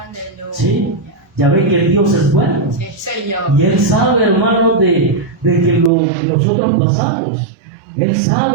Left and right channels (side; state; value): left; drops out; at 5.9 s